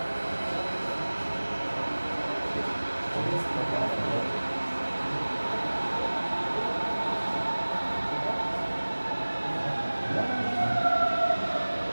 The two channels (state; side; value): inverted; both; correlation -1.00